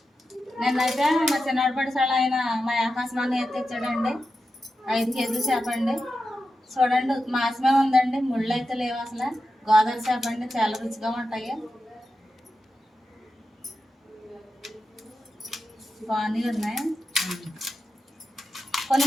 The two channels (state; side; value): normal; both; correlation 0.90